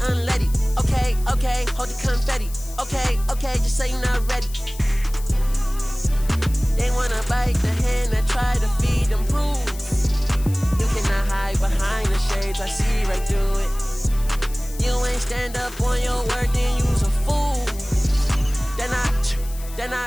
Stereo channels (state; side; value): noise; left; hiss, 17 dB below the sound